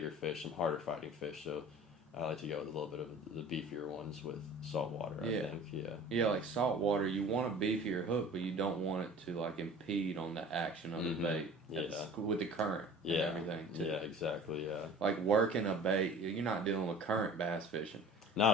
fish, some harder fighting fish. So, I like to go with a little bit of the beefier ones with saltwater. I think, yeah. Yeah, like saltwater, you want a beefier hook, but you don't want it to like impede on the action of the bait. With the current and everything too. Yeah, exactly. Yeah. Like working a bait, you're not dealing with current bass fishing. Not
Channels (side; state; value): both; normal; correlation 0.43